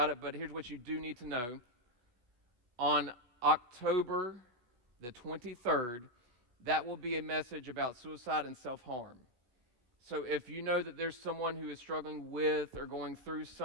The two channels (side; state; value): left; late; 17 ms